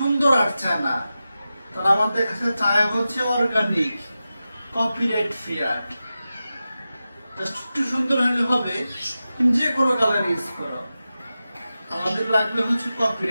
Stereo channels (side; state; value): both; inverted; correlation -0.93